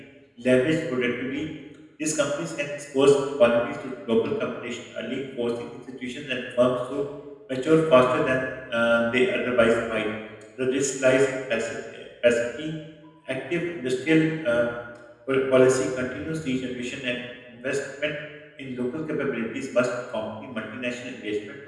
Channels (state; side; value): identical; both; correlation 1.00